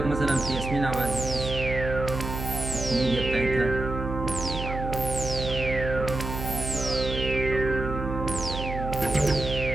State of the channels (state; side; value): noise; right; hum, 6 dB below the sound